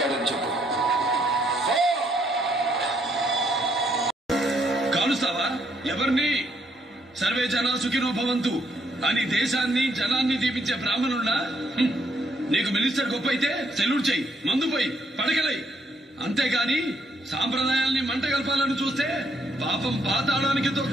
చెప్పు. కాలుస్తావా? ఎవరిని? సర్వే జనా సుఖినో భవంతు అని దేశాన్ని జనాన్ని దీపించే బ్రాహ్మణుడా? నీకు మినిస్టర్ గొప్ప అయితే సెల్యూట్ చెయ్యి, మందు పోయి పడకలై. అంతేగాని సాంప్రదాయాల్ని మంట కలపాలని చూస్తే పాపం పాతాళానికి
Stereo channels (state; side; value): normal; both; correlation 0.72